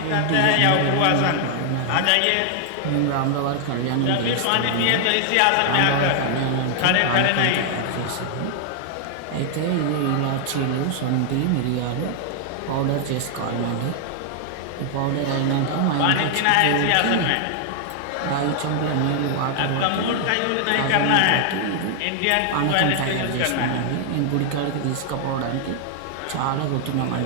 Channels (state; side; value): different; both; correlation 0.00